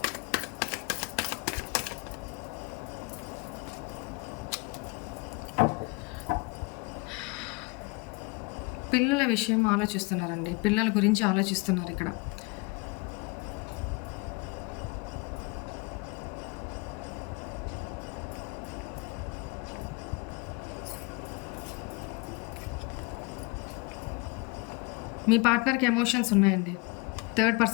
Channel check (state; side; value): quieter; right; 27.5 dB